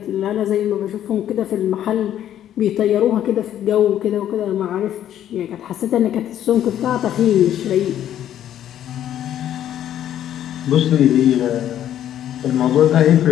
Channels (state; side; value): quieter; right; 11.1 dB